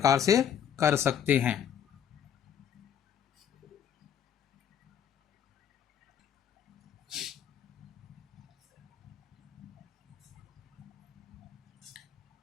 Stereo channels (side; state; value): right; quieter; 8.9 dB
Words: से कर सकते हैं।